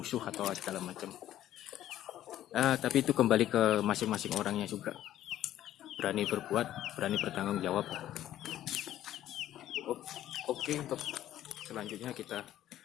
atau segala macam. Tapi itu kembali ke masing-masing orangnya juga, berani berbuat, berani bertanggung jawab. Oke, untuk selanjutnya kita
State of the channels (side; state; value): right; quieter; 12.7 dB